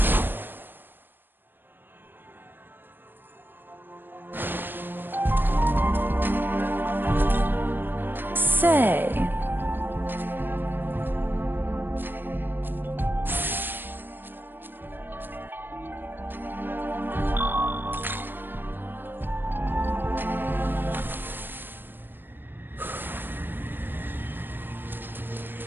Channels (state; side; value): late; left; 0.096 ms